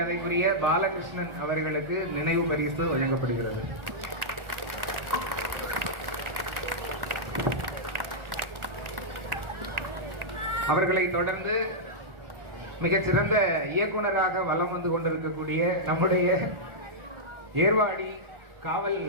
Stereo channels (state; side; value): late; left; 1.4 ms